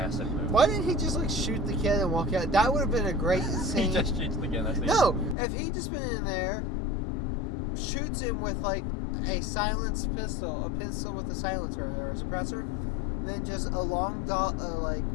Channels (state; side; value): drops out; right; at 5.4 s